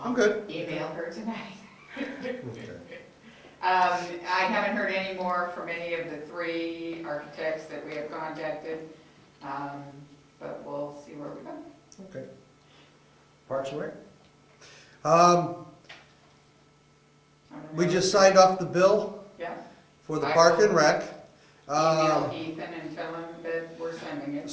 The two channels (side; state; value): both; identical; correlation 1.00